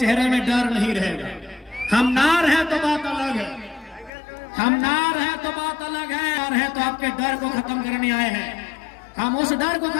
में डर नहीं रहेगा। हम ना रहे तो बात अलग है, हम ना रहे तो बात अलग है। और है तो आपके डर को खत्म करने आए हैं। हम उस डर को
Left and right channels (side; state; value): right; drops out; at 4.1 s